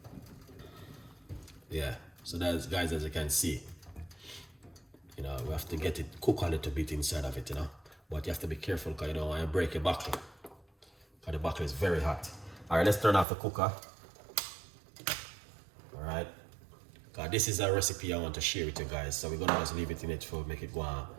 Yeah. So that's, guys, as you can see, you know, we have to get it cook a little bit inside of it, you know. But you have to be careful because you don't want to break your buckle. Because the buckle is very hot. Alright, let's turn off the cooker. Alright. This is a recipe I want to share with you guys. So we're gonna just leave it in it for make it go on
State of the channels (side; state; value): left; drops out; at 13.2 s